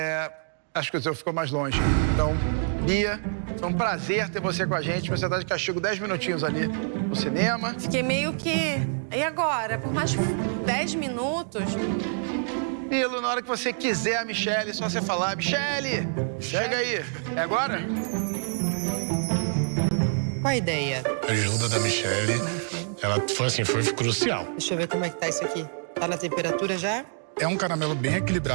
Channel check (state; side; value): silent; left; digital silence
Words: acho que o seu ficou mais longe. Então, Bia, foi um prazer ter você com a gente. Você tá de castigo 10 minutinhos ali no cinema. Fiquei meio que... E agora? Por mais 10 minutos... Nilo, na hora que você quiser a Michele, é só você falar. Michele, chega aí. É agora? Qual a ideia? A ajuda da Michele, ela foi crucial. Deixa eu ver como é que tá isso aqui. Tá na temperatura já? É um caramelo bem